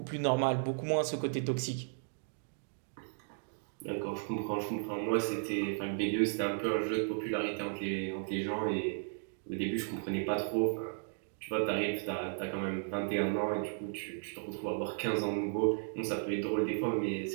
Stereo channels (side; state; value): left; silent; digital silence